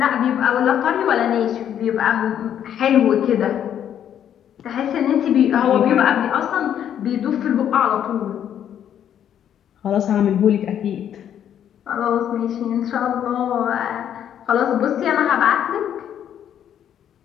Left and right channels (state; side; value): quieter; right; 9.7 dB